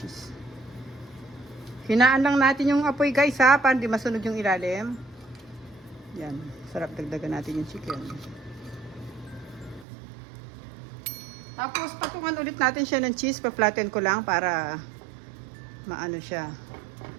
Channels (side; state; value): left; drops out; at 9.9 s